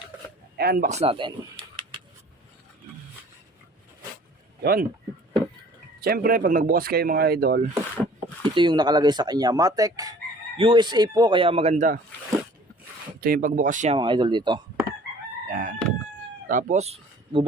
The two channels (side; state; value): both; normal; correlation 0.50